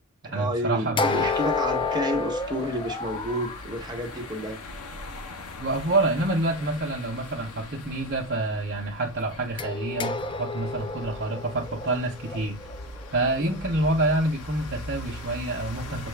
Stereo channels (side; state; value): both; normal; correlation 0.22